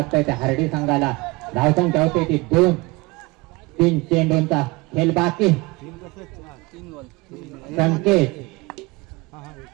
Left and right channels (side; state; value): left; quieter; 24.1 dB